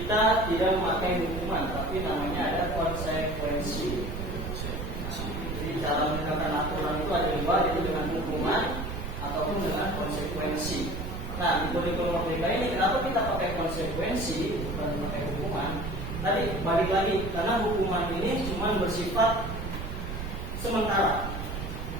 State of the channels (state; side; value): noise; right; rumble, 5 dB below the sound